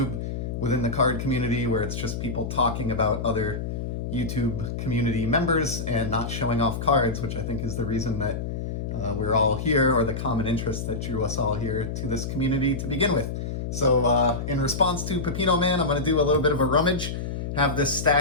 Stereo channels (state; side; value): noise; left; hum, 4 dB below the sound